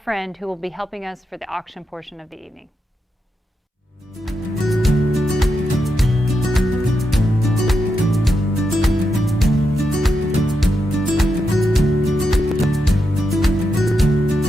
who will be helping us for the auction portion of the evening.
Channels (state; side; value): normal; both; correlation 0.85